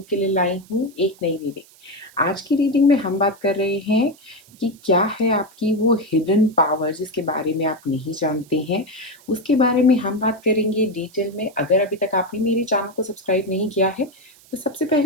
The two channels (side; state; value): right; noise; hiss, 26 dB below the sound